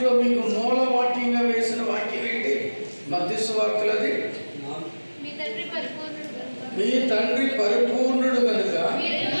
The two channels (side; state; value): both; inverted; correlation -1.00